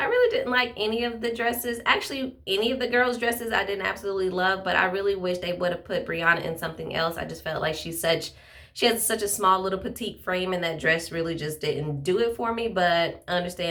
really didn't like any of the dresses. Actually, any of the girls' dresses I didn't absolutely love, but I really wish they would have put Brianna in something else. I just felt like she has such a small little petite frame, and that dress really just didn't do it for me. But I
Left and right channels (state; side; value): identical; both; correlation 1.00